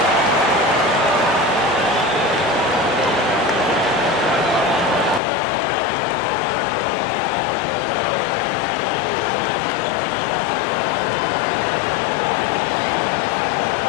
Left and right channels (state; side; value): drops out; right; at 5.2 s